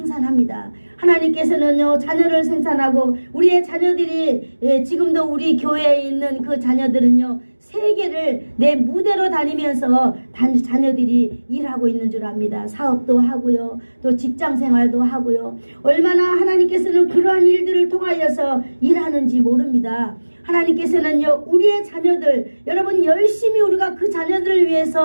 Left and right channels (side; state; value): both; inverted; correlation -1.00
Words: 하나님께서는요 자녀를 생산하고 우리의 자녀들이 지금도 우리 교회에 있는 그 자녀들은요 세계를 내 무대로 다니면서 자녀들이 일하고 있는 줄 압니다. 사업도 하고요 또 직장생활도 하고요 얼마나 하나님께서는 그러한 일들을 통하여서 일하는지 모릅니다. 하나님께서는요 우리의 자녀들 여러분 열심히 우리가 그 자녀들을